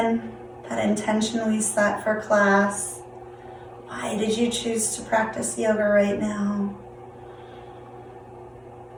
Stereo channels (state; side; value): identical; both; correlation 1.00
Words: that intention we set for class. Why did you choose to practice yoga right now?